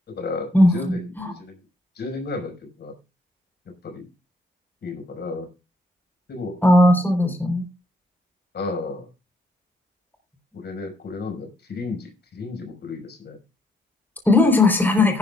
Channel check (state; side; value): normal; both; correlation 0.73